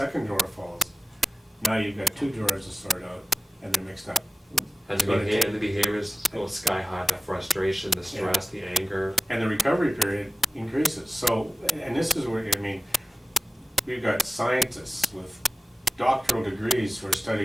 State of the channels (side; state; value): both; normal; correlation 0.95